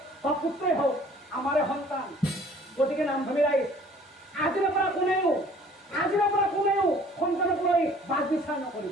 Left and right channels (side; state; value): both; normal; correlation 0.53